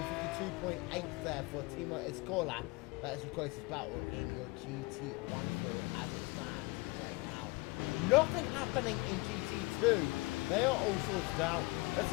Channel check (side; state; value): right; quieter; 25.0 dB